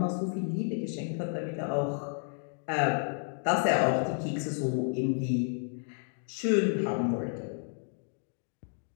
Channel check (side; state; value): right; silent; 55 dB below the other